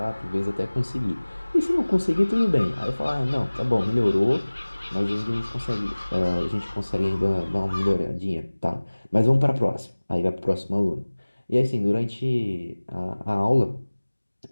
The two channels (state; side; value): inverted; both; correlation -1.00